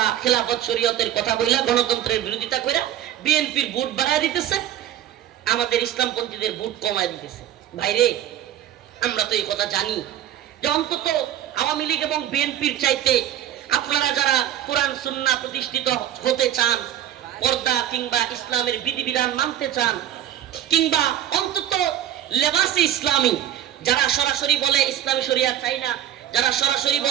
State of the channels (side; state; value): left; quieter; 11.5 dB